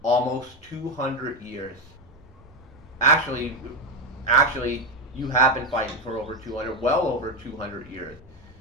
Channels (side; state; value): both; normal; correlation 0.13